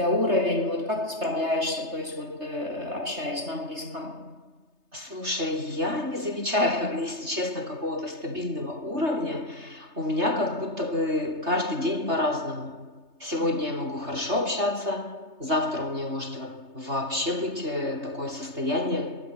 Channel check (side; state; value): left; late; 3.3 ms